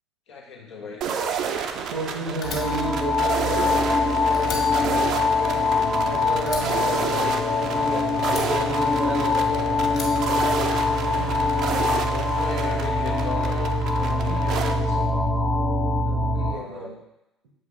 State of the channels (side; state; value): both; normal; correlation 0.69